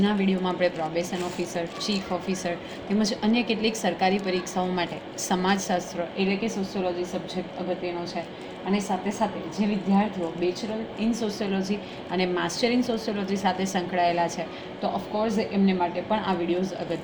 વિડીયોમાં આપણે પ્રોબેશન ઓફિસર, ચીફ ઓફિસર તેમજ અન્ય કેટલીક સરકારી પરીક્ષાઓ માટે સમાજશાસ્ત્ર એટલે કે સોશિયોલોજી સબ્જેક્ટ અગત્યનો છે. અને સાથે સાથે જે વિદ્યાર્થીઓ બેચલર ઇન સોશિયોલોજી અને માસ્ટર ઇન સોશિયોલોજી સાથે સંકળાયેલા છે તો ઓફકોર્સ એમને માટે પણ આ વિડીયોઝ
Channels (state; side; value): identical; both; correlation 1.00